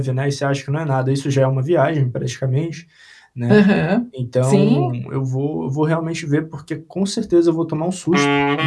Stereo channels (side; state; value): both; identical; correlation 1.00